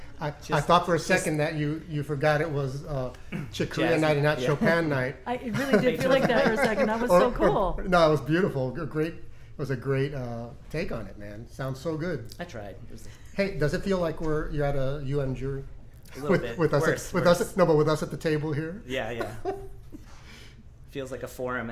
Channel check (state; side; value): identical; both; correlation 1.00